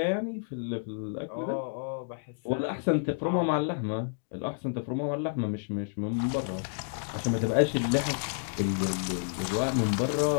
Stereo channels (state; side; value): silent; right; digital silence